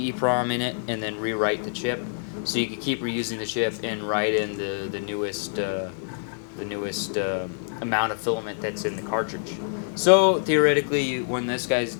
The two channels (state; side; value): silent; right; digital silence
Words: in it and then rewrite the chip. So you could keep reusing the chip and write in the newest amount of filament that's in the cartridge. So theoretically, when this guy's